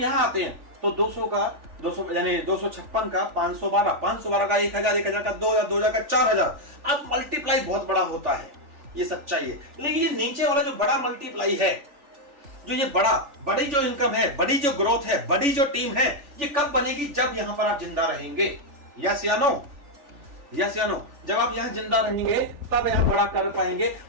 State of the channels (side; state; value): left; late; 3.4 ms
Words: आते हैं तो 200 का 200 यानी 256 का 512, 512 का 1000, 1000 का 2000, 2000 का 4000, अब मल्टीप्लाई बहुत बड़ा होता है, ये सच्चाई है। लेकिन ये नीचे वाला जो बड़ा मल्टीप्लाई है, जो ये बड़ी जो इनकम है, बड़ी जो ग्रोथ है, बड़ी जो टीम है, ये कब बनेगी? जब यहां पर आप जिंदा रहेंगे। यस या नो? यस या नो? जब आप यहां जिंदा रहेंगे तब यहां बड़ा कर पाएंगे।